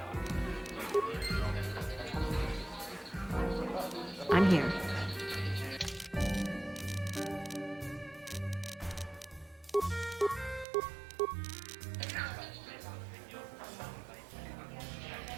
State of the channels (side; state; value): left; drops out; at 10.7 s